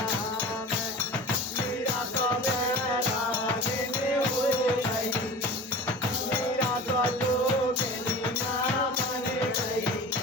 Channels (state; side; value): normal; both; correlation 0.35